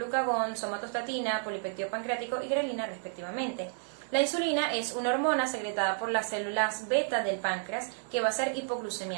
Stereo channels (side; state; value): left; silent; 57 dB below the other